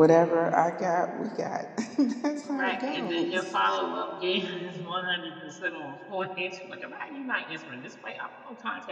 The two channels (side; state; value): both; identical; correlation 1.00